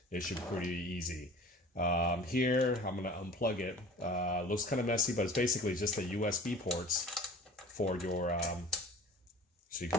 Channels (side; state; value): both; normal; correlation 0.43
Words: it should be pretty easy. Here, I'm gonna unplug it. Looks kind of messy, but it's basically just the USB ports for your, so you